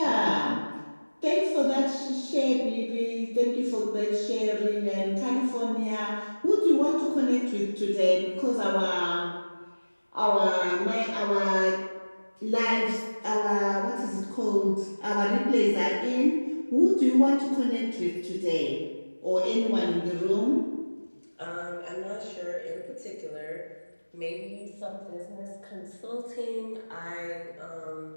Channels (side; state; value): both; inverted; correlation -1.00